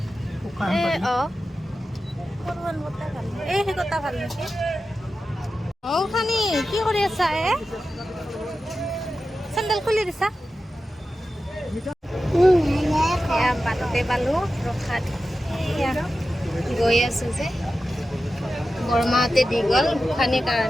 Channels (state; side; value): normal; both; correlation 0.93